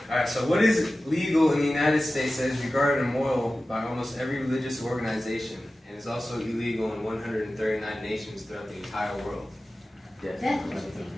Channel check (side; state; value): both; normal; correlation 0.95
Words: so what is legal in the United States that is regarded immoral by almost every religious organization, and is also illegal in 139 nations throughout the entire world? Death penalty.